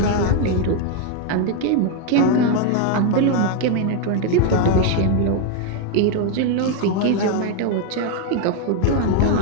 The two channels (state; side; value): different; both; correlation 0.01